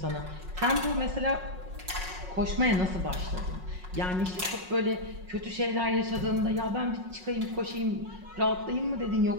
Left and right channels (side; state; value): left; late; 5.5 ms